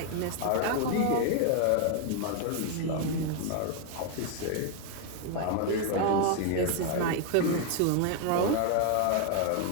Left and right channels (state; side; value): different; both; correlation 0.00